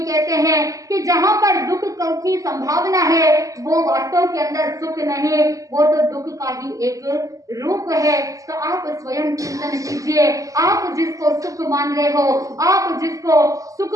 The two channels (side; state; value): left; late; 0.16 ms